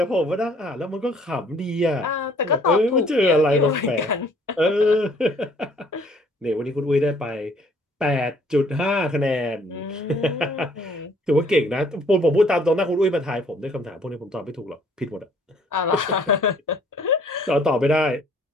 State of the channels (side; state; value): both; normal; correlation 0.60